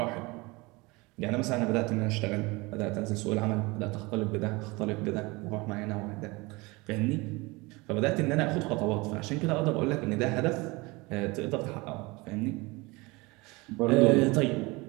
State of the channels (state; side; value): quieter; left; 24.3 dB